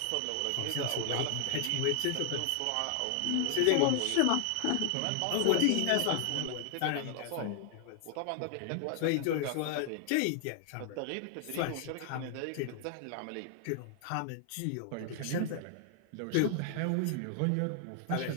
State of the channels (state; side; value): different; both; correlation 0.00